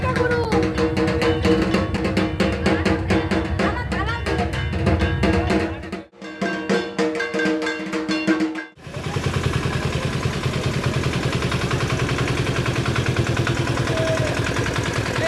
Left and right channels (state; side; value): identical; both; correlation 1.00